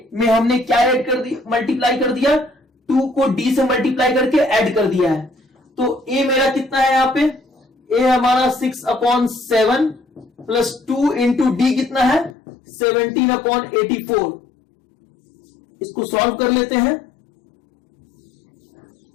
में हमने क्या ऐड कर दिया, मल्टीप्लाई कर दिया, 2 को d से मल्टीप्लाई करके ऐड कर दिया है। तो a मेरा कितना है यहां पे, a हमारा 6/7 प्लस 2 इंटू डी कितना है 17/84। इसको सॉल्व कर लेते हैं।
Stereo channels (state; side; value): drops out; right; at 12.4 s